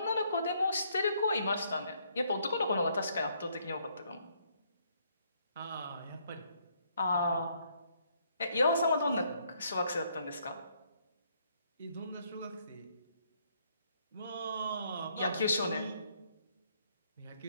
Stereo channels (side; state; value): both; inverted; correlation -0.70